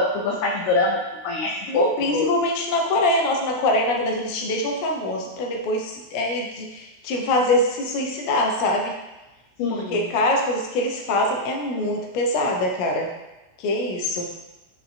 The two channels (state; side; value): late; right; 16 ms